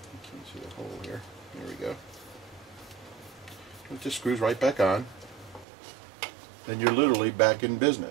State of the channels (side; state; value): left; drops out; at 5.7 s